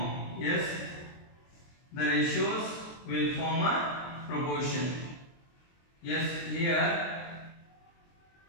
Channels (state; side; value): late; right; 23 ms